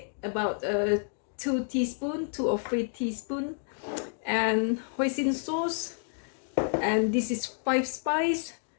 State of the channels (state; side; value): silent; right; digital silence